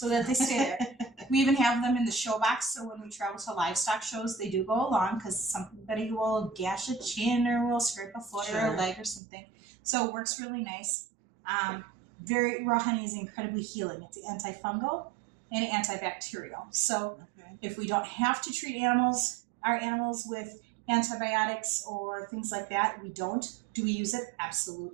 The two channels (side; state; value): left; drops out; at 9.2 s